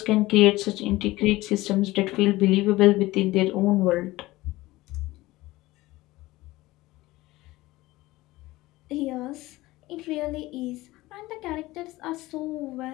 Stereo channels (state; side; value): quieter; right; 18.7 dB